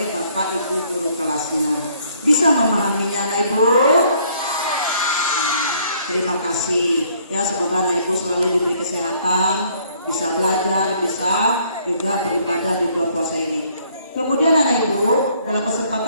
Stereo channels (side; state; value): both; inverted; correlation -0.64